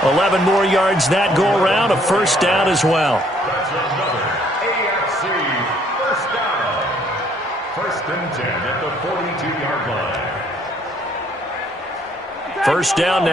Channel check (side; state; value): both; normal; correlation 0.64